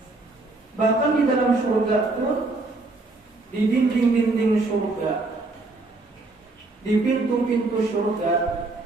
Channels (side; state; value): left; quieter; 3.3 dB